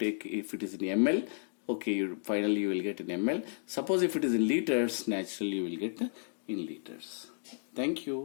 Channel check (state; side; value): silent; right; digital silence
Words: okay, finally you will get in ml. Suppose if it is in liters, naturally you will get in liters. Thank